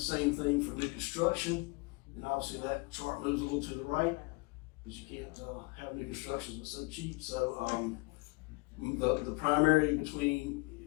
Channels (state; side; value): quieter; right; 27.5 dB